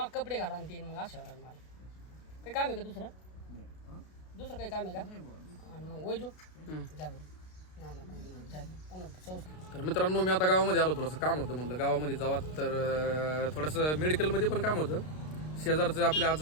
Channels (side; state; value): right; late; 32 ms